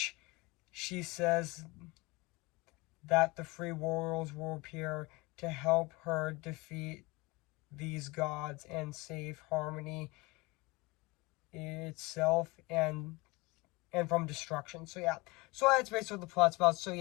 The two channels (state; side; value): quieter; right; 24.1 dB